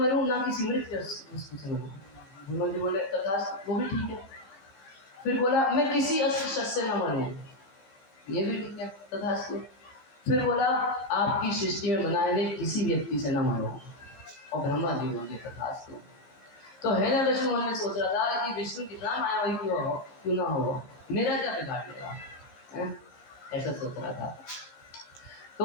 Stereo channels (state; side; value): late; right; 15 ms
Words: ना किसी मृत वस्तु से मरूं। ब्रह्मा जी बोले तथास्तु, वो भी ठीक है। फिर बोला मैं किसी अस्त्र शस्त्र से न मरूं। ये भी ठीक है, तथास्तु। फिर बोला आपकी सृष्टि में बनाए गए किसी व्यक्ति से न मरो। और ब्रह्मा जी बोले तथास्तु। तो हिरण्यकशिपु मन में सोच रहा था कि विष्णु कितना मायावी क्यों ना हो, मेरा क्या बिगाड़ लेगा, ऐसा सोच रहा था।